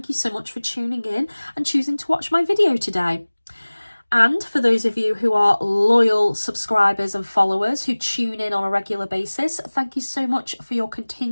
you so much for tuning in and choosing to watch my video today. And for those of you who are loyal subscribers and followers who tune in on a regular basis, thank you so much for your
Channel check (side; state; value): both; inverted; correlation -1.00